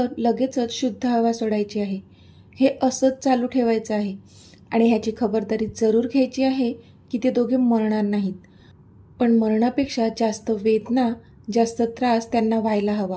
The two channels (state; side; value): identical; both; correlation 1.00